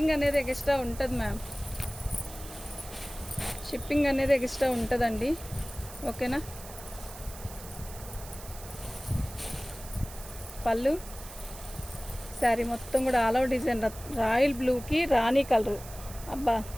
అనేది ఎక్స్ట్రా ఉంటుంది మ్యామ్, షిప్పింగ్ అనేది ఎక్స్ట్రా ఉంటుందండి. ఓకేనా, పళ్ళు శారీ మొత్తం కూడా ఆల్ ఓవర్ డిజైన్ రాయల్ బ్లూకి రాణి కలరు. అబ్బా,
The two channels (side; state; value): right; noise; hiss, 15 dB below the sound